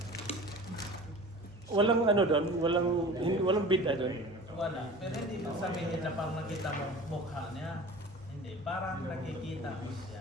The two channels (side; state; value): both; normal; correlation 0.39